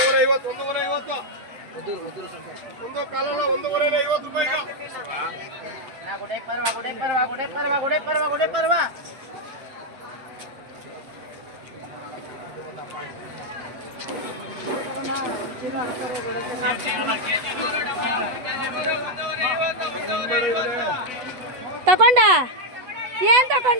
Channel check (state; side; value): late; left; 8.0 ms